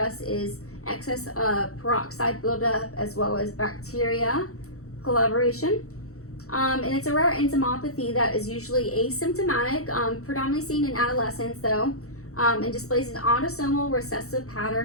is excess peroxide buildup as well as bacteria collaboration. And it's a rare enzymopathy that is usually asymptomatic, predominantly seen in adolescents though, and displays an autosomal recessive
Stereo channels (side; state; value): right; late; 0.64 ms